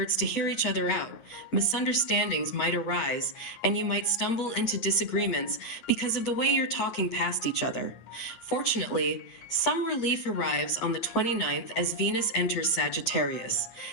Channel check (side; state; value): right; late; 8.9 ms